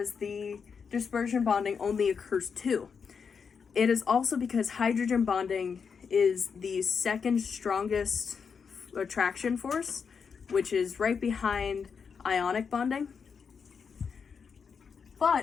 the dispersion bonding only occurs 2. It is also because hydrogen bonding is the second strongest attraction force, which is right behind ionic bonding.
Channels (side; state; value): right; quieter; 6.1 dB